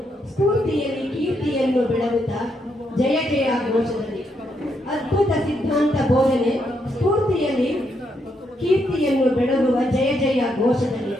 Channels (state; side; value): normal; both; correlation 0.78